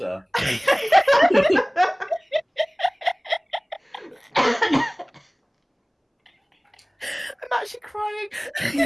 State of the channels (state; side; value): identical; both; correlation 1.00